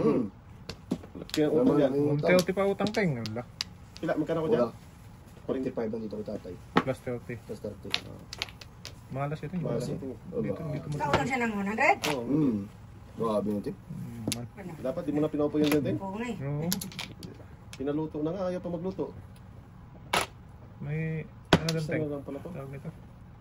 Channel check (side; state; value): both; identical; correlation 1.00